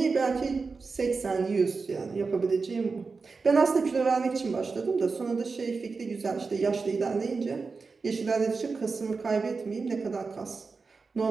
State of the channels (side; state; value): left; quieter; 4.5 dB